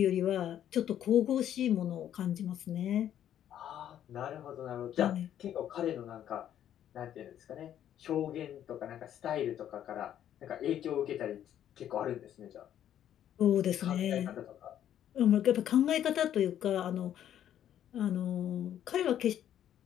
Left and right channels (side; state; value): right; quieter; 10.7 dB